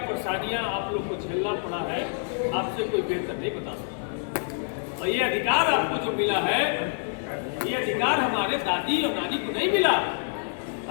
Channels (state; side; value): silent; right; digital silence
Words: आप लोग को झेलना पड़ा है, आपसे कोई बेहतर नहीं बता सकता। और ये अधिकार आपको जो मिला है, ये अधिकार हमारे दादी और नानी को नहीं मिला।